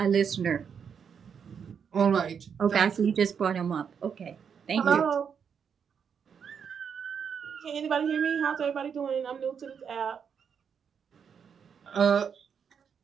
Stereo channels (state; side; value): quieter; left; 7.1 dB